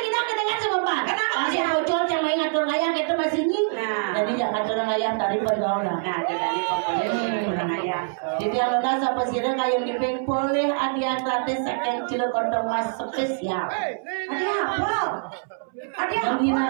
kedengar sama Pak. Masih bocor yang main ngatur ayam kita masih ini. Jadi jangan ngatur ayam tadi pergaulan. Nah, jadi pokoknya ayam. Jadi kalau nasa pesirnya kayak dipik boleh hadiah gratis second cilok kodong mas spesial. Hadiah apa? Hadiah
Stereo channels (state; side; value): silent; left; 62 dB below the other